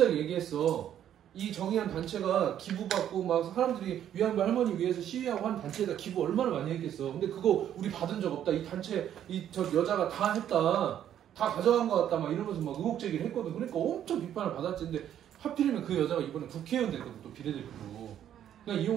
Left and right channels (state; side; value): quieter; left; 10.4 dB